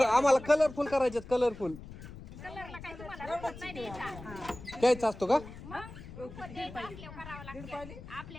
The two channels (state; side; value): noise; left; rumble, 14 dB below the sound